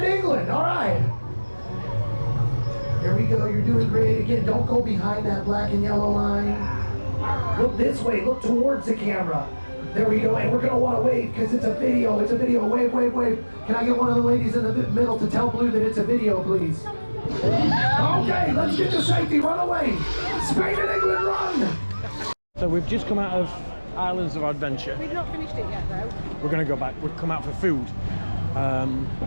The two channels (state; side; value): inverted; both; correlation -1.00